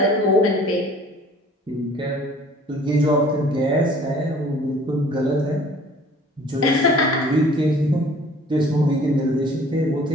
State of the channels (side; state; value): both; normal; correlation 0.51